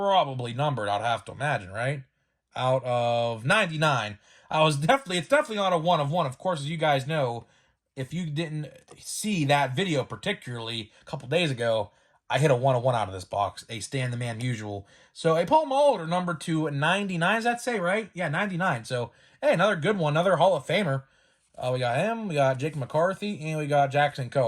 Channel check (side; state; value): both; identical; correlation 1.00